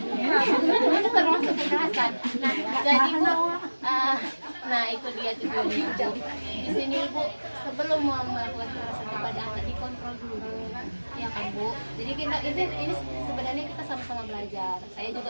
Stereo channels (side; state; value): both; inverted; correlation -1.00